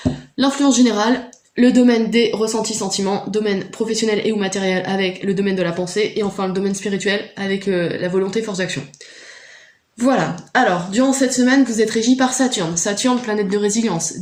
l'influence générale, le domaine des ressentis sentiments, domaine professionnel et ou matériel avec le domaine de la pensée et enfin le domaine spirituel avec la volonté force d'action. Voilà, alors durant cette semaine vous êtes régi par Saturne. Saturne, planète de résilience,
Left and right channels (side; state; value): both; identical; correlation 1.00